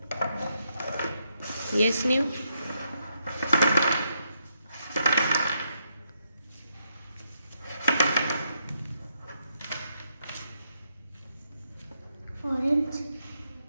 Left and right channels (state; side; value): inverted; both; correlation -0.78